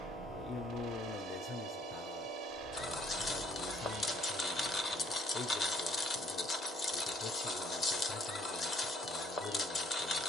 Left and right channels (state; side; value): normal; both; correlation 0.62